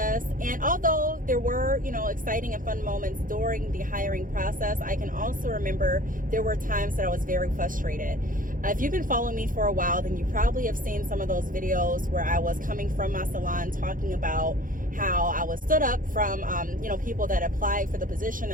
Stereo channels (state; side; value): late; left; 0.40 ms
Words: And although there were, exciting and fun moments during the hiring process, I can also remember there were times that I was very frustrated. If you've been following me for a while, then you probably have seen some of those videos where I was coming from my salon talking about how I was stood up from, people that applied for the position